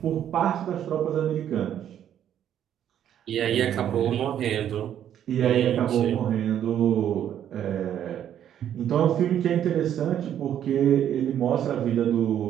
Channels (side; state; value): left; quieter; 10.2 dB